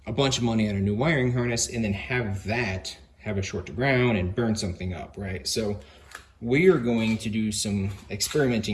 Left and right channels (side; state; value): both; identical; correlation 1.00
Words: a bunch of money on a new wiring harness and then have a short to ground and burn something up, right? So we are going to do some